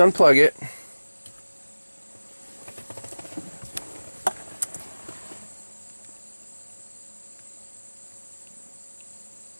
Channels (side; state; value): both; inverted; correlation -1.00